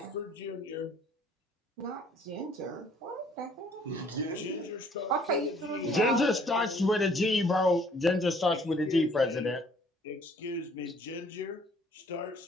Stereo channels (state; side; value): normal; both; correlation 0.59